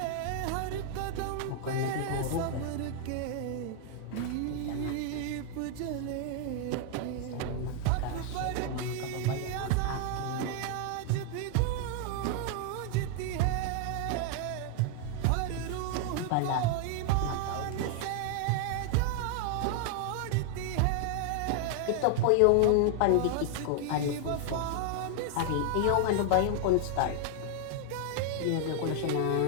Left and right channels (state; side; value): different; both; correlation 0.00